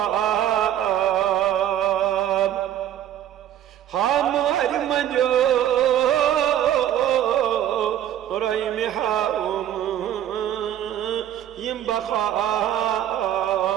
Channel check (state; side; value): quieter; left; 11.3 dB